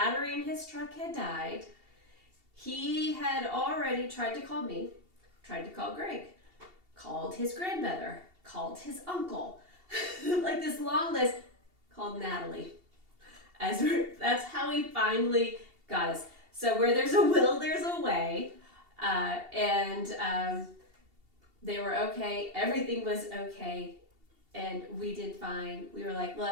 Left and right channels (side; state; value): left; late; 2.7 ms